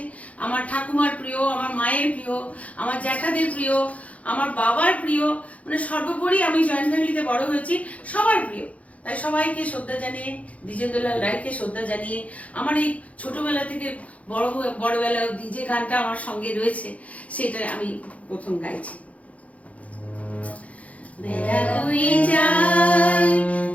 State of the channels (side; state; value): right; late; 0.067 ms